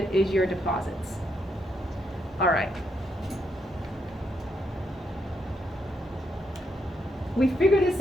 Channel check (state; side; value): normal; both; correlation 0.79